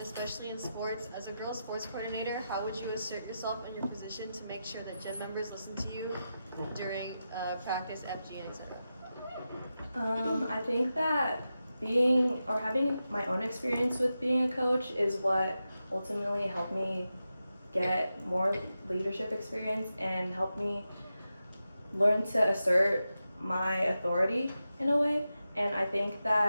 in sports. As a girl sports coordinator, how would you assert yourself in your position to make sure that Gen members listen to you during practice, FG, and etc.? I think that having my own experience with being a coach is what ultimately helped me get more leadership experience and helped me learn to assert my authority in a way. And I think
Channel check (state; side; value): inverted; both; correlation -0.90